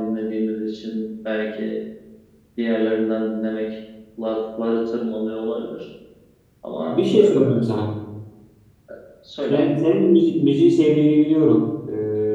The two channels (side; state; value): both; identical; correlation 1.00